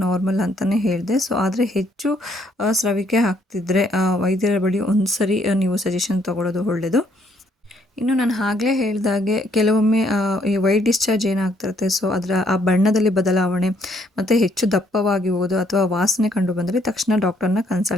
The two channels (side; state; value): both; normal; correlation 0.68